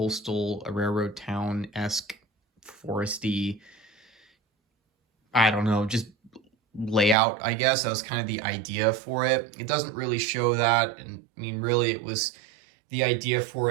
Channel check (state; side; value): drops out; left; at 7.2 s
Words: railroad town-esque, foresty, I don't know, just layout, I guess. That was kind of the idea for it. It doesn't really show that. And I mean, really, it was the idea for